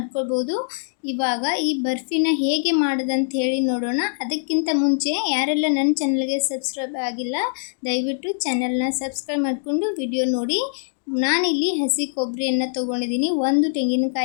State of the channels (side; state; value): right; silent; digital silence